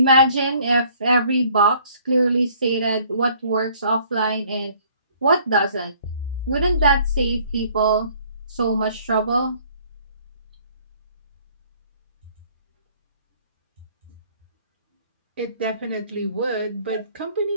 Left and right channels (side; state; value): both; inverted; correlation -0.59